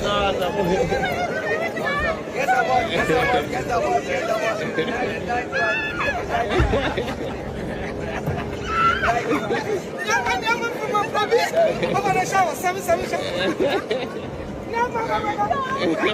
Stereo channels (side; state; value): both; identical; correlation 1.00